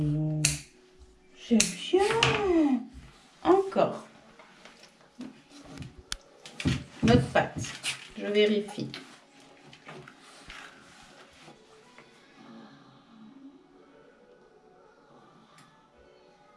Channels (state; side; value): identical; both; correlation 1.00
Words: C'est bien. Encore. Notre patte. Je vérifie.